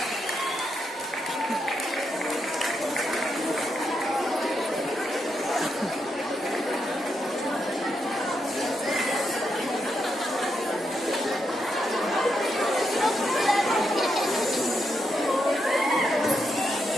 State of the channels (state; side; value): normal; both; correlation 0.82